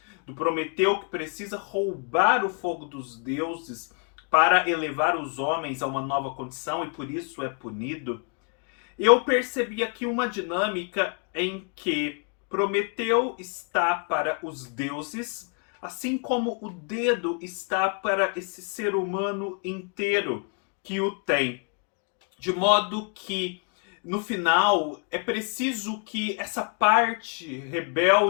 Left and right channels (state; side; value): quieter; right; 37.6 dB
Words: do Prometeu que precisa roubar o fogo dos deuses para elevar os homens a uma nova condição e por isso é punido, eu percebi aqui uma dinâmica em que Prometeu está para os deuses, assim como o dedo está para esse ser humano inteiro que o tem. De modo que, no final, é preciso que essa parte